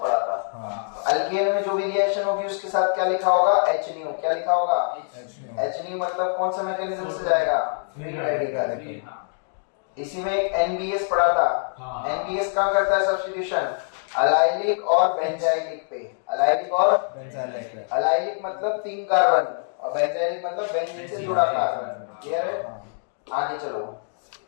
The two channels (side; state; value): right; silent; digital silence